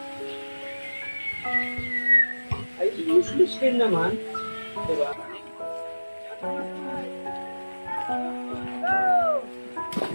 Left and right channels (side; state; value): both; inverted; correlation -1.00